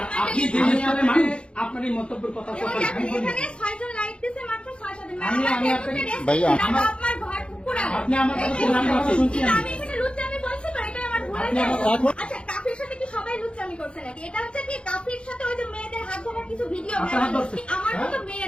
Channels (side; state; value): right; late; 0.057 ms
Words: আপনি যে হিসাবে মানুষ আপনার এই মন্তব্যের কথা এখানে 6 জন লাইক দিছে, মাত্র 6 জন। ভাইয়া, আপনার ঘর পুরানো। আপনি আমার কথা শুনুন, আমি কথা শুনছি। আমি এখানে লুচ্চামি বলছি তো, এটা আমার ভুল হয়েছে। আচ্ছা, কাফির সাথে কি সবাই লুচ্চামি করছে নাকি? এটা হচ্ছে কি কাফির সাথে ওই যে মেয়েদের হাত ধরার কিছু ভিডিও ভাইরাল হচ্ছে। আমার মতো মেয়ে